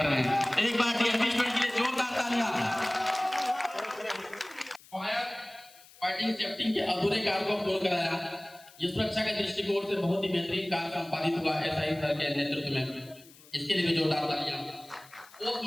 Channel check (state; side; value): noise; left; hiss, 23 dB below the sound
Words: रहे हैं। एक बार डीएनबी स्टूडेंट के लिए जोरदार तालियां। फायर फाइटिंग सेफ्टी के अधूरे कार्य को पूर्ण कराया। ये सुरक्षा के दृष्टिकोण से बहुत ही बेहतरीन कार्य संपादित हुआ एसआई सर के नेतृत्व में। इसके लिए भी जोरदार तालियां।